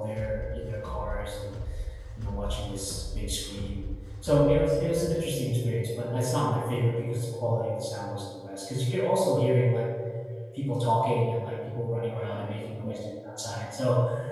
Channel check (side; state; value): both; identical; correlation 1.00